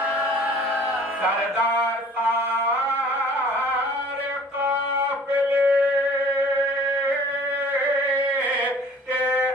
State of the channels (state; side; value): normal; both; correlation 0.51